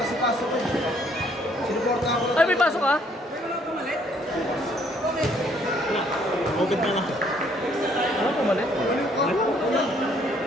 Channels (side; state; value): both; normal; correlation 0.65